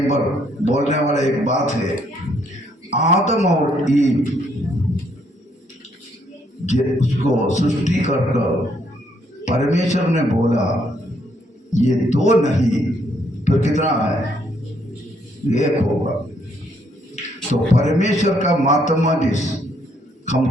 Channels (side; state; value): both; normal; correlation 0.70